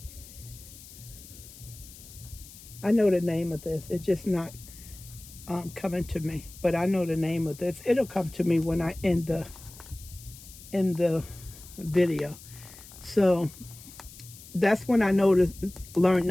I know the name of this. It's just not coming to me. But I know the name of this. It'll come to me when I end the video. So that's when I learned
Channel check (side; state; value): left; noise; hiss, 18 dB below the sound